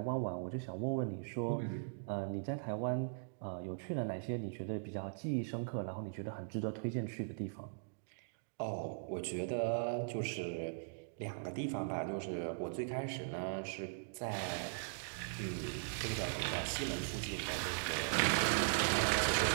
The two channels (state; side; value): silent; left; digital silence